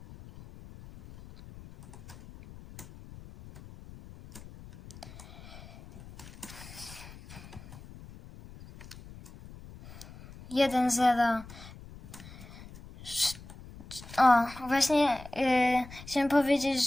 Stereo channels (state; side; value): noise; left; rumble, 17 dB below the sound